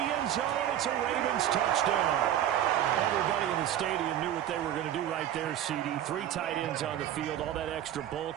end zone. It's a Ravens touchdown. Everybody in the stadium knew what they were going to do right there, CD. 3 tight ends on the field, all that extra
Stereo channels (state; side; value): quieter; left; 11.3 dB